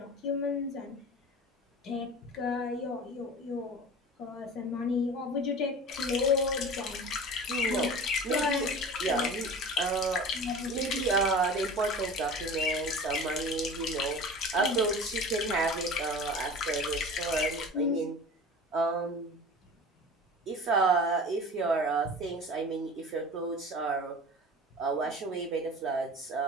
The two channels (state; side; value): normal; both; correlation 0.37